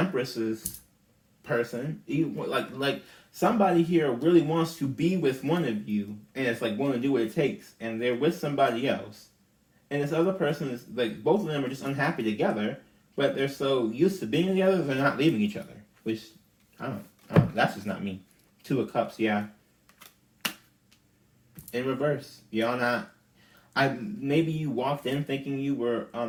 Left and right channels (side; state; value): both; identical; correlation 1.00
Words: person. Like somebody here really wants to be with one of you, and it's like willing to do what it takes, and they're with somebody else, and this other person is like both of them are just unhappy together, but they're so used to being together they're not leaving each other. Which I don't. That's just not me. Two of Cups, yeah. In reverse, y'all not. Maybe you walked in thinking you were